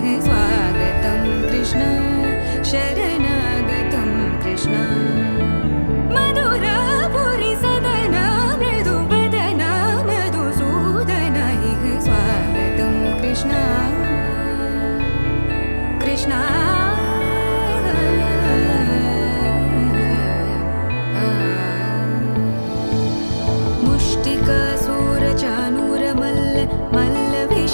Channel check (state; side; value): inverted; both; correlation -1.00